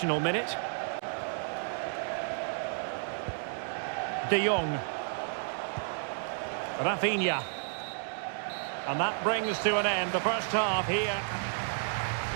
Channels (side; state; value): left; silent; digital silence